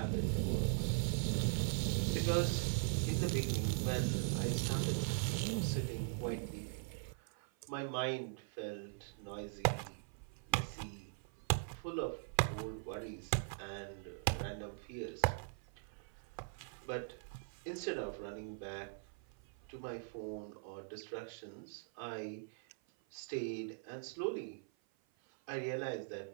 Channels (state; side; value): silent; left; 50 dB below the other